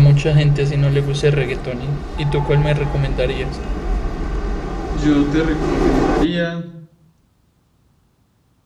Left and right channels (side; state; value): both; identical; correlation 1.00